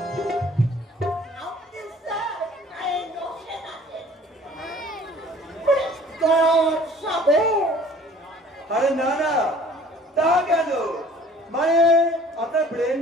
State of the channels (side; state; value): both; normal; correlation 0.51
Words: আপনি স্যার এই নকশে আছেন। তোর সবে আরে না না, তা কেন, মানে আপনার ব্রেন